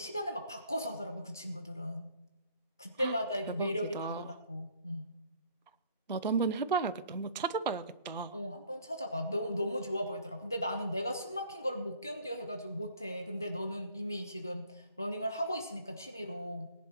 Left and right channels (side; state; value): both; inverted; correlation -0.56